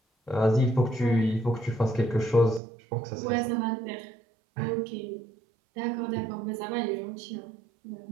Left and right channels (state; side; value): drops out; left; at 2.6 s